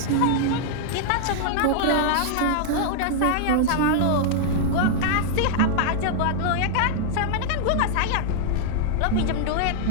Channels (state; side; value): different; both; correlation -0.01